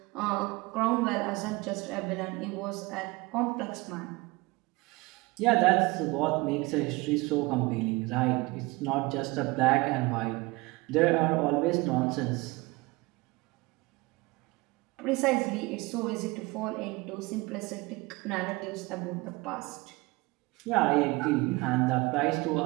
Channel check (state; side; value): quieter; left; 23.5 dB